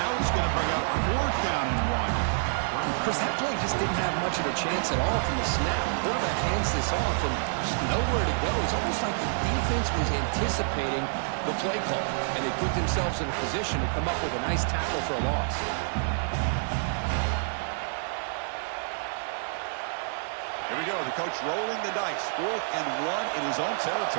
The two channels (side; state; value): left; silent; digital silence